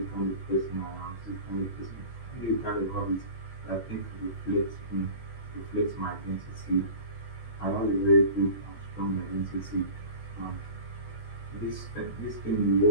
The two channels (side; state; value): right; late; 16 ms